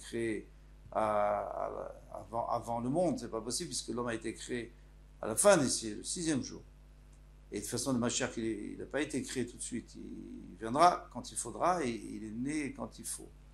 avant le monde, c'est pas possible, puisque l'homme a été créé à la fin le 6e jour. Et de toute façon, le Mashiach, il n'a pas été créé tout de suite, il viendra quand il faudra, et il est né quand il faut.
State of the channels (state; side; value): identical; both; correlation 1.00